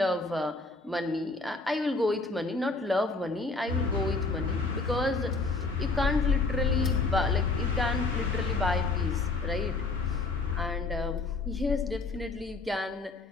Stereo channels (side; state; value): right; quieter; 3.6 dB